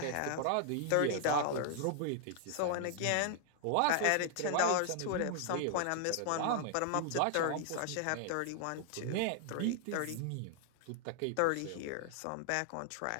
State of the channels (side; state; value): both; different; correlation 0.00